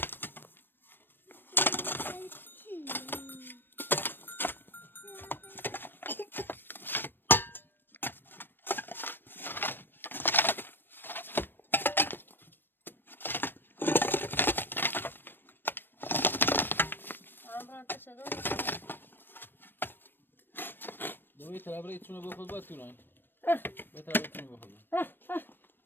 Ambran taşıdı. دوی طرف را ایتونه بخود باید توران به طرف ایتونه بخود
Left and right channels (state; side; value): late; right; 0.096 ms